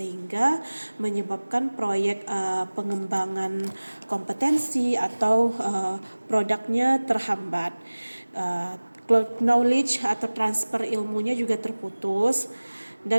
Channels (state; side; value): inverted; both; correlation -1.00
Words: menyebabkan proyek pengembangan kompetensi atau produknya terhambat. Knowledge atau transfer ilmunya juga terputus